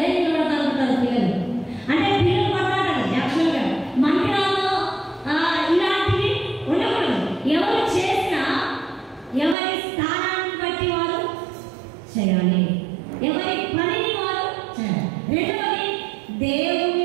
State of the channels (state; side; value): drops out; left; at 9.6 s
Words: నేను పడతాను అంటారు పిల్లలు. అంటే పిల్లలు కొట్లాడాలి. యాక్చువల్గా మందిరాల్లో ఇలాంటివి ఉండకూడదు. ఎవరు చేసినా ఎవరి స్థానాన్ని బట్టి వారు చేయాలి, ఎవరి పనిని వారు చేయాలి. రెండవది,